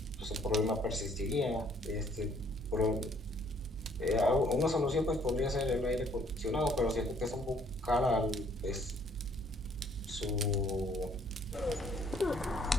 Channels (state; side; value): normal; both; correlation 0.63